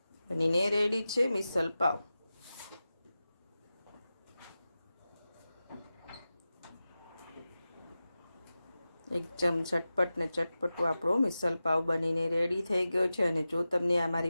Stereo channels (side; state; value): both; inverted; correlation -0.94